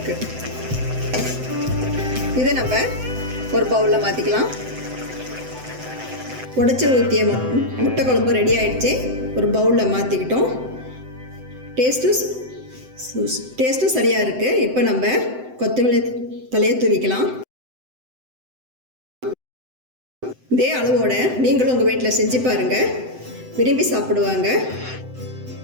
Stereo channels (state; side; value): late; left; 7.8 ms